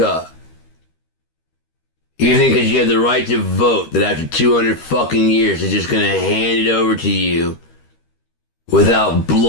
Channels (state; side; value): late; right; 13 ms